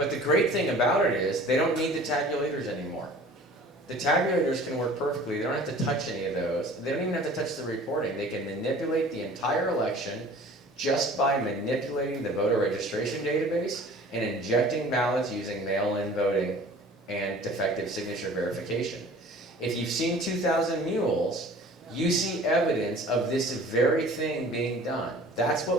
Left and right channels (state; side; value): normal; both; correlation 0.47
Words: the great thing about it is they don't need the tabulators anymore. The tabulators can work perfectly. They don't have to touch any of those. They don't even have to touch the reporting. They can manipulate the entire election just by manipulating the voter registration database and injecting ballots using mail-in voting and defective signature verification. If you've seen 2,000 Mules, you see evidence of this very thing being done. That's